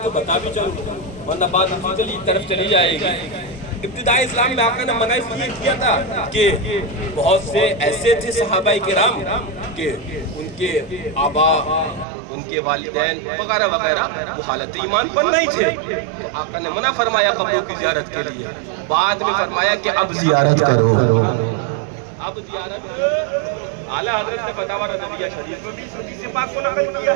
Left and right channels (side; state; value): left; drops out; at 12.1 s